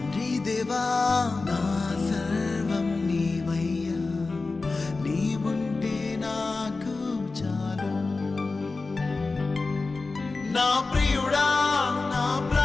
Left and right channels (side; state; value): right; quieter; 3.8 dB